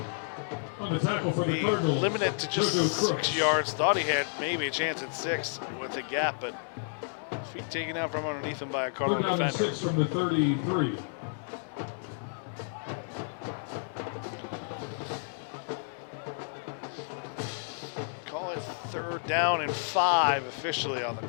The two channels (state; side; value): silent; right; digital silence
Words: be limited to just 6 yards. Thought he had maybe a chance at 6 with the gap, but feet taken out from underneath him by a Cardinal defender. 6 from the 33. Call it 3rd down and 5 officially on the